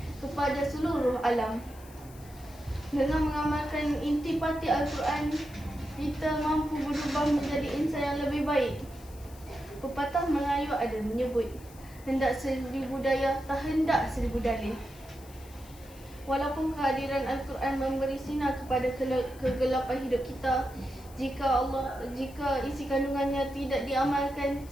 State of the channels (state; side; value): noise; left; hiss, 22 dB below the sound